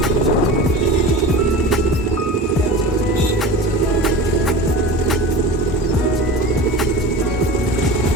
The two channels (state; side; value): normal; both; correlation 0.32